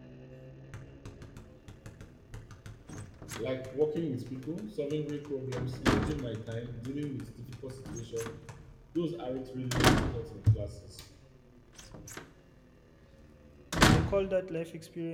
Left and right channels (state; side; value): identical; both; correlation 1.00